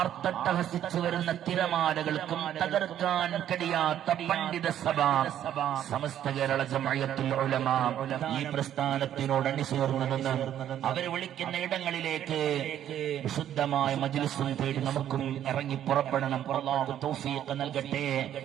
വരുന്ന തിരമാലകൾക്കും തകർക്കാൻ കഴിയാത്ത പണ്ഡിത സഭ സമസ്ത കേരള ജംഇയ്യത്തുൽ ഉലമ ഈ പ്രസ്ഥാനത്തിനോട് അണിചേർന്നു നിന്ന് അവർ വിളിക്കുന്ന ഇടങ്ങളിലേക്ക് വിശുദ്ധമായ മജ്ലിസും തേടി നമുക്കും ഇറങ്ങി പുറപ്പെടണം. അല്ലാഹു തൗഫീഖ് നൽകട്ടെ.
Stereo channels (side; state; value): left; quieter; 10.9 dB